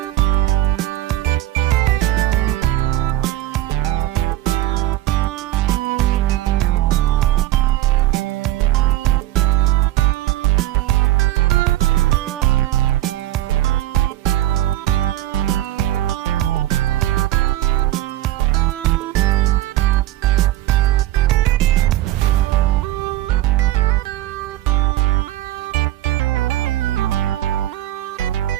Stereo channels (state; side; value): quieter; left; 14.9 dB